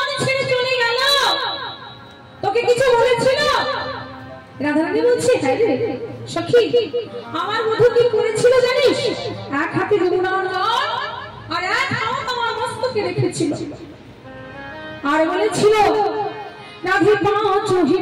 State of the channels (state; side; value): identical; both; correlation 1.00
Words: ছেড়ে চলে গেল তোকে কিছু বলেছিল রাধারানী বলছে হ্যাঁ রে সখী আমার বন্ধু কি করেছিল জানিস এক হাতে যমুনার জল আর এক হাত আমার মস্তকে রেখেছিল আর বলেছিল রাধে পাঁচ হি